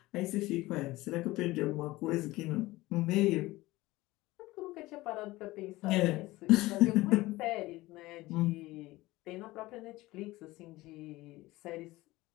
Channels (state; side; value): quieter; right; 19.1 dB